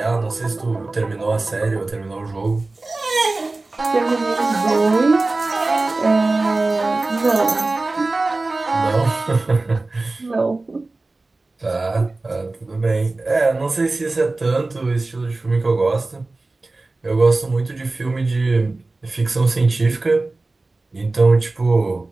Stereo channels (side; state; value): left; quieter; 3.2 dB